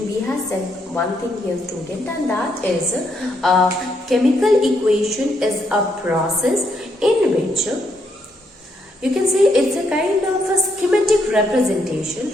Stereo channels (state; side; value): normal; both; correlation 0.76